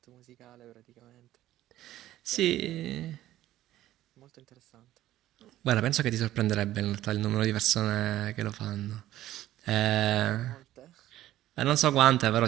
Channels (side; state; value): left; quieter; 14.1 dB